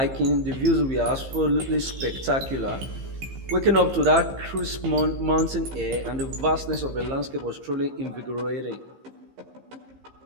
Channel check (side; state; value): left; late; 15 ms